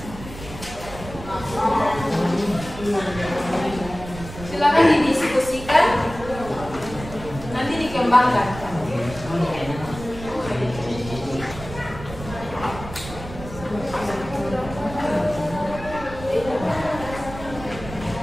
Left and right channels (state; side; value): noise; right; rumble, 12 dB below the sound